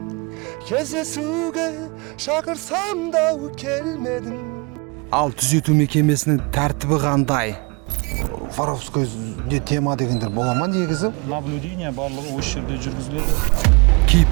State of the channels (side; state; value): left; quieter; 30.3 dB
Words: кездесуге шақырсам да келмедің. Ал түзету мекемесінің тәртібі қандай? Воровскойде тема дегендер бола ма негізі? Наблюдение барлығы осы жерде жүргізіледі.